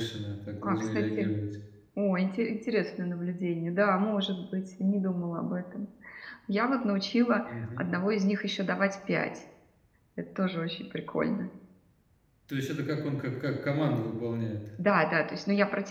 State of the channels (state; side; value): identical; both; correlation 1.00